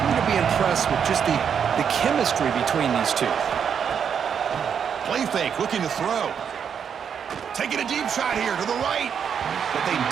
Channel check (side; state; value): left; quieter; 7.5 dB